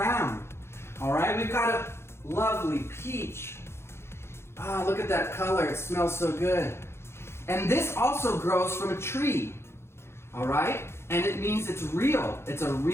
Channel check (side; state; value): right; late; 0.12 ms